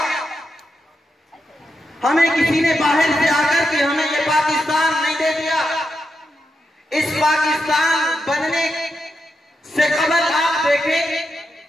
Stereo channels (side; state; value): both; normal; correlation 0.85